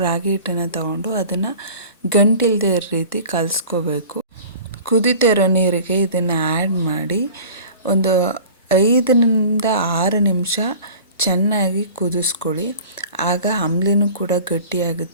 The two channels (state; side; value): inverted; both; correlation -0.42